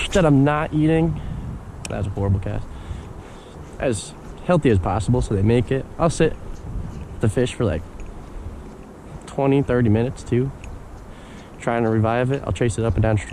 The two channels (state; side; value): identical; both; correlation 1.00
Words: that I'm not eating. That was a horrible cast. As healthy as possible so they make it. I'll sit the fish for like 20-30 minutes too, trying to revive it. I'll chase it up and down